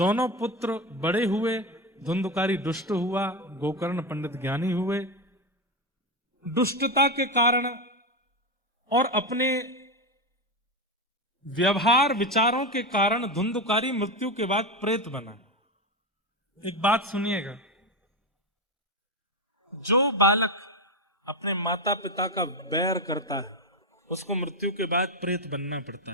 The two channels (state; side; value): normal; both; correlation 0.14